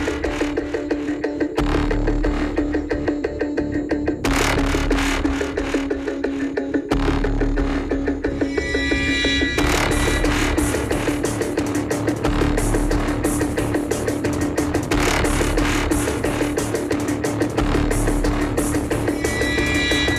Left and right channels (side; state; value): both; identical; correlation 1.00